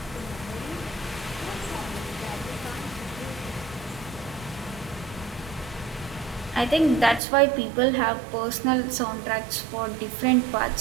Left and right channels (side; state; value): left; drops out; at 7.2 s